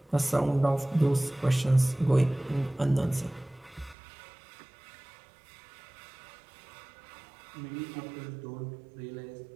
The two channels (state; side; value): drops out; left; at 4.0 s